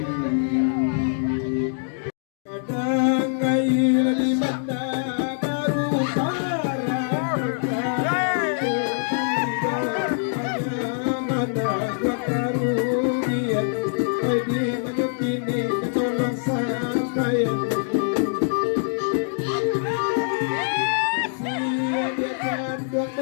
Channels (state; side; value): silent; right; digital silence